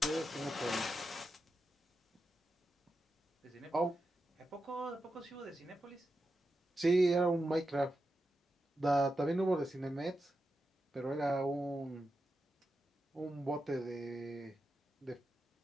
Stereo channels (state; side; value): normal; both; correlation 0.89